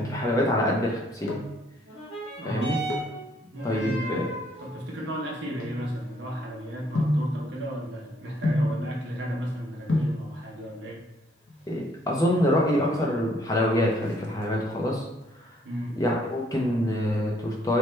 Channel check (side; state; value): both; normal; correlation 0.67